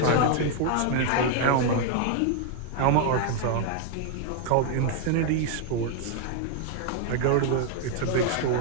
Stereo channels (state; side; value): different; both; correlation 0.00